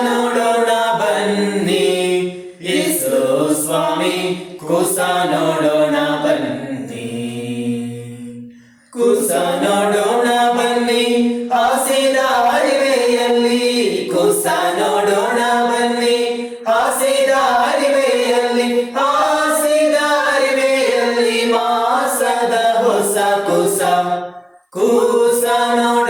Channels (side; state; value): both; identical; correlation 1.00